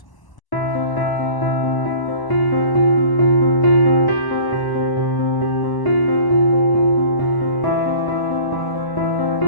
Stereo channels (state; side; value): late; right; 1.0 ms